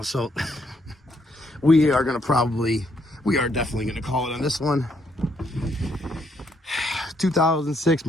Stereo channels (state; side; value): normal; both; correlation 0.72